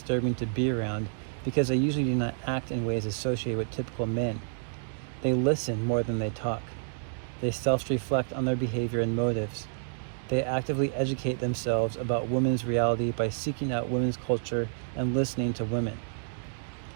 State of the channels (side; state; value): left; silent; digital silence